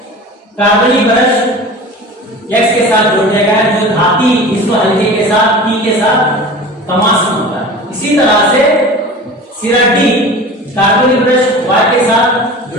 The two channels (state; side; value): normal; both; correlation 0.36